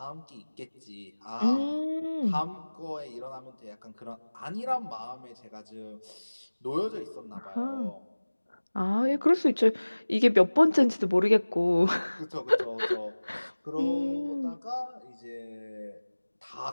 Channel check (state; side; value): inverted; both; correlation -1.00